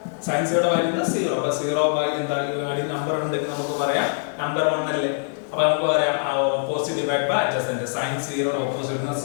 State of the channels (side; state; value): right; silent; digital silence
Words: sin 0 വാല്യൂ എന്താ 0 അപ്പോൾ 0 ബൈ എന്താ ഈ നമ്പർ ഉണ്ടെങ്കിൽ നമുക്ക് പറയാം നമ്പർ 1 അല്ലേ അപ്പോൾ നമുക്ക് പറയാം opposite divide by adjacent sin 0 opposite എന്താ